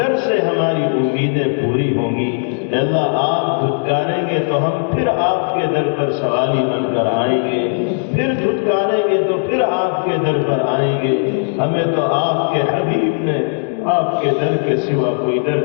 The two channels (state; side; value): silent; right; digital silence